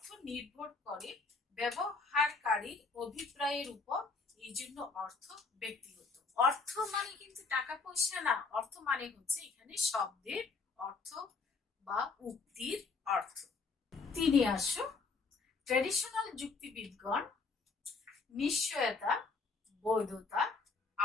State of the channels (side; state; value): right; quieter; 4.3 dB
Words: নির্ভর করে ব্যবহারকারীর অভিপ্রায়ের উপর, এই জন্য অর্থ ব্যক্তিগত। অর্থ মানে কিন্তু টাকা পয়সা না, অর্থ মানে হচ্ছে এখানে শব্দের অর্থ বা উক্তির অর্থ। 3 আসো, ট্র্যাডিশনাল যুক্তিবিদগণ নিশ্চয়তা, বৈধতা,